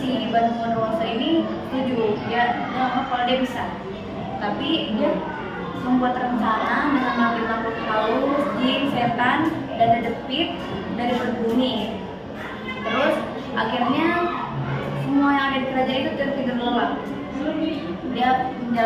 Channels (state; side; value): identical; both; correlation 1.00